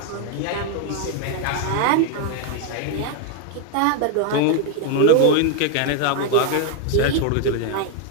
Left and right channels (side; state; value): both; different; correlation 0.01